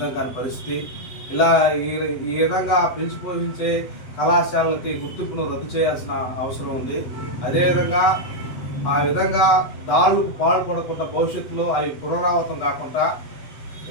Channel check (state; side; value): late; right; 8.1 ms